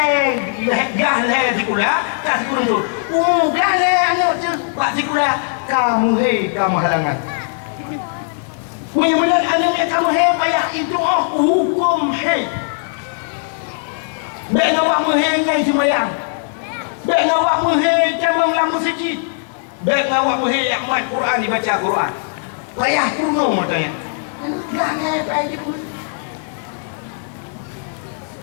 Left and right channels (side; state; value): right; silent; digital silence